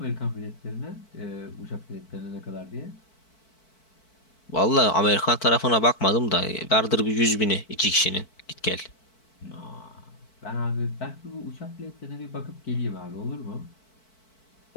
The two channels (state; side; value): late; right; 4.5 ms